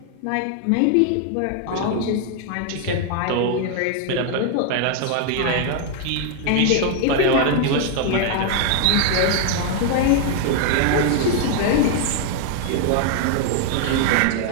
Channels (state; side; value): different; both; correlation 0.00